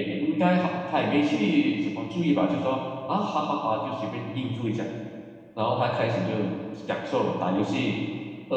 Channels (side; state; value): both; identical; correlation 1.00